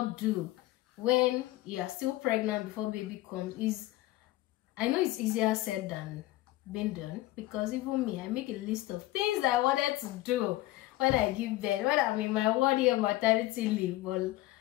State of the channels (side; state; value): right; quieter; 17.2 dB